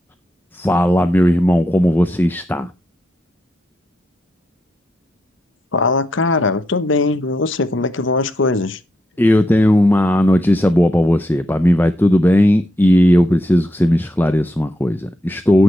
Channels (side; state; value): both; normal; correlation 0.83